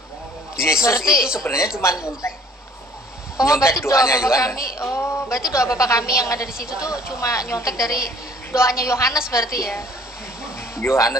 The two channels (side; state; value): both; normal; correlation 0.55